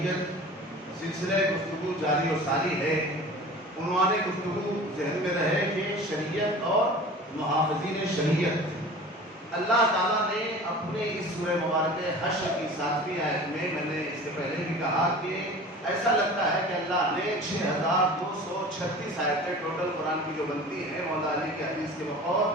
سلسلہ گفتگو جاری و ساری ہے۔ عنوان گفتگو ذہن میں رہے کہ شریعت اور محافظین شریعت۔ اللہ تعالیٰ نے اپنے اس سورہ مبارکہ حشر کی 7ویں آیت میں نے اس سے پہلے بھی کہا کہ ایسا لگتا ہے کہ اللہ نے 6236 آیتیں ٹوٹل قرآن کی جو بنتی ہیں مولا علی کے حدیث کے بقول،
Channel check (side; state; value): both; normal; correlation 0.40